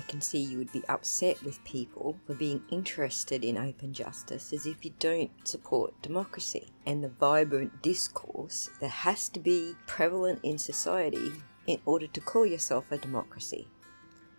can see you would be upset with people for being interested in open justice is if you don't support democracy and the vibrant discourse that has to be prevalent in society in order to call yourself a democracy.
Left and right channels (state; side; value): inverted; both; correlation -1.00